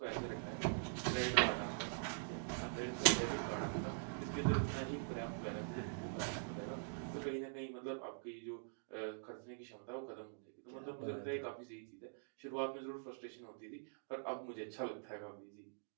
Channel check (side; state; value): left; silent; digital silence